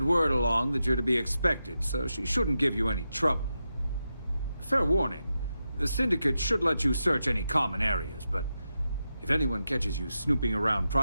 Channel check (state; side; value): inverted; both; correlation -0.88